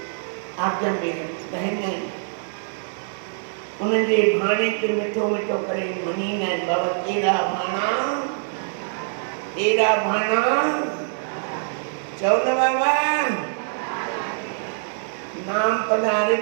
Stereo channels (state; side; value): silent; left; digital silence